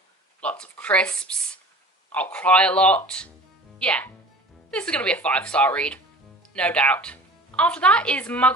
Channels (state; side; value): normal; both; correlation 0.41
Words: lots of crisps. I'll cry a lot. Yeah, this is going to be a 5-star read, no doubt. After that is